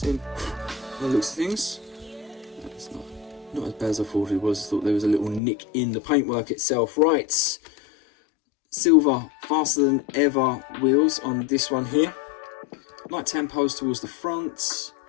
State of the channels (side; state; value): right; drops out; at 5.4 s